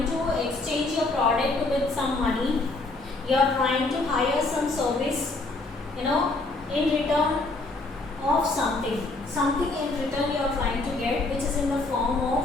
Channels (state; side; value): quieter; right; 3.2 dB